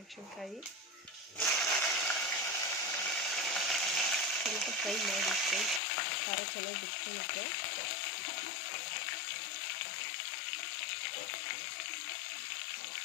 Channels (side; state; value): right; drops out; at 5.8 s